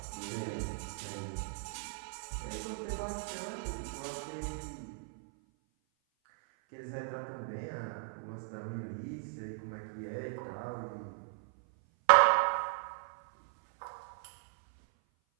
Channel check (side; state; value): left; silent; 53 dB below the other